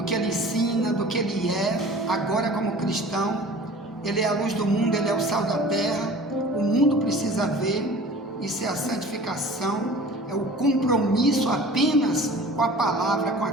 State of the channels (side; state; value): both; normal; correlation 0.43